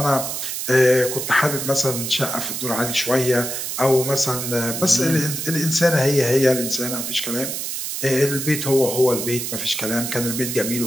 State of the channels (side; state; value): right; noise; hiss, 4 dB below the sound